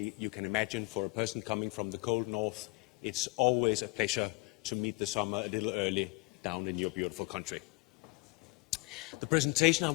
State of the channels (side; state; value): right; quieter; 26.5 dB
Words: you can imagine for a person coming from the cold north, it's always a pleasure to meet the summer a little early down in your beautiful country. The presentation I